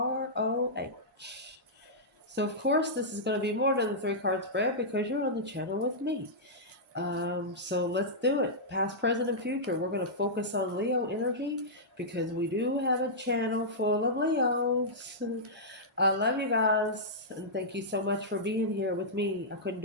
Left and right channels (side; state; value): both; normal; correlation -0.12